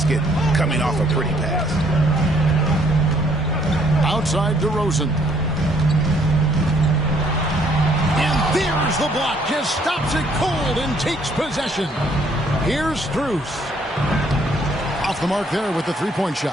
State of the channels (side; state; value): both; normal; correlation 0.65